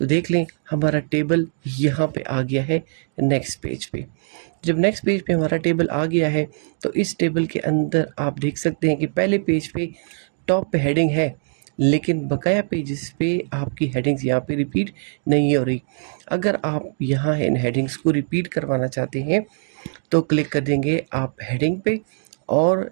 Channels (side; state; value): left; silent; digital silence